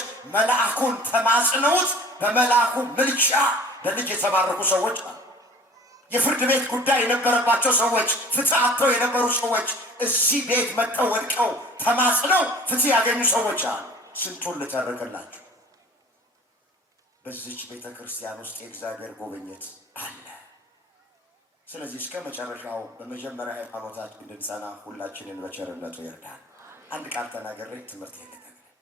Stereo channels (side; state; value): both; normal; correlation 0.45